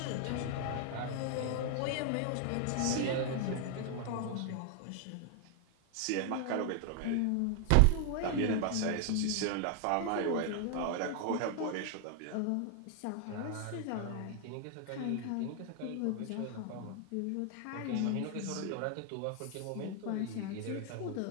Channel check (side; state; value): both; different; correlation 0.00